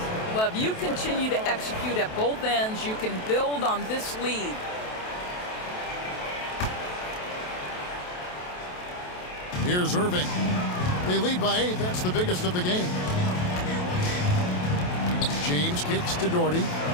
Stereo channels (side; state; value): right; late; 28 ms